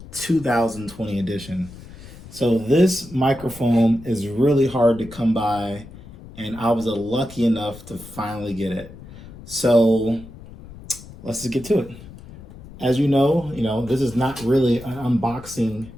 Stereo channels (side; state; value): left; noise; rumble, 17 dB below the sound